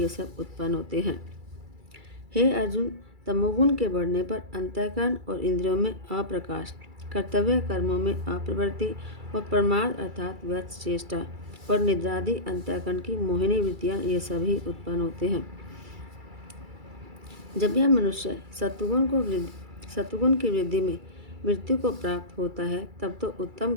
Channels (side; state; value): left; late; 2.3 ms